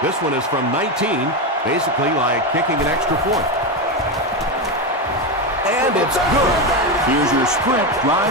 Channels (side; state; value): both; normal; correlation 0.13